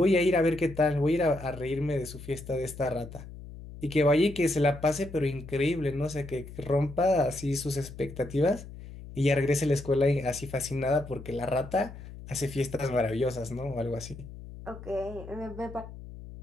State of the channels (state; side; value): noise; left; hum, 14 dB below the sound